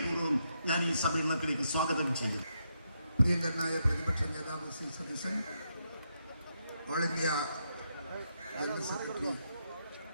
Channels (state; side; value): inverted; both; correlation -0.81